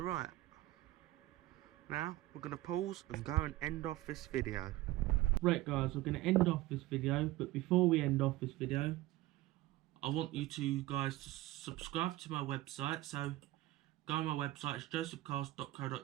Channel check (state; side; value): quieter; left; 17.3 dB